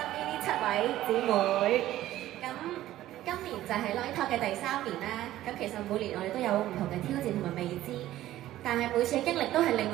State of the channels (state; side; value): quieter; left; 14.2 dB